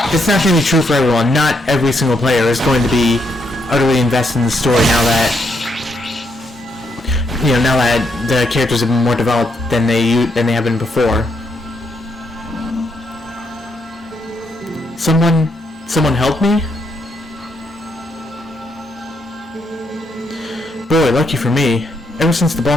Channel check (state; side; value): normal; both; correlation 0.77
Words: not going to be true for everyone. Not every single player is going to be utterly invested in the story now that the characters have been more developed than they have been before. Someone help me? Boy, lucky for me. Ever since the